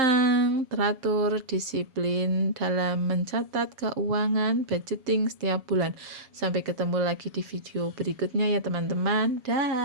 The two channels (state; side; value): late; left; 7.6 ms